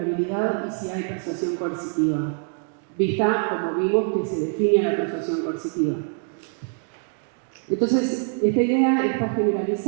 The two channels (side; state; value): left; silent; 55 dB below the other